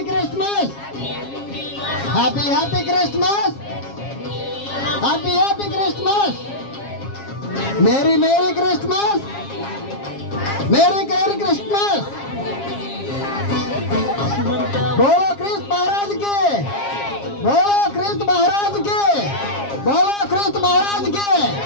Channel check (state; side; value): late; right; 7.4 ms